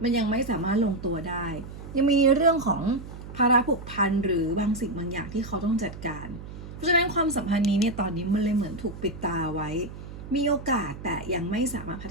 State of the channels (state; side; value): noise; right; hum, 12 dB below the sound